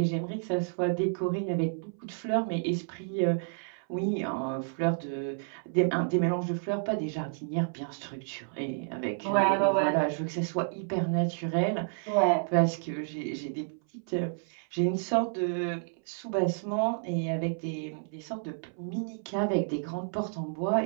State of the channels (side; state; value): left; silent; 58 dB below the other